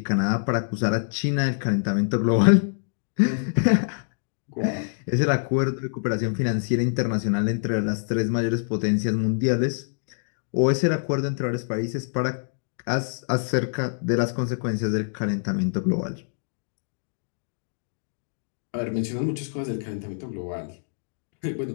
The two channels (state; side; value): silent; right; digital silence